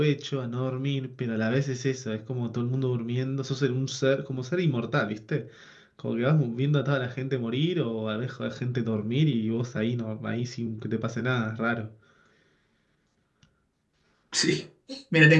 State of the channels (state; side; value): identical; both; correlation 1.00